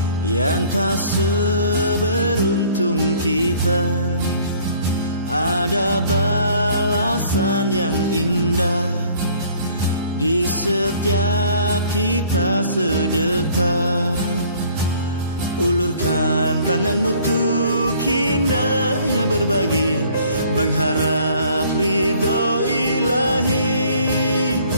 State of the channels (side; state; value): both; inverted; correlation -0.56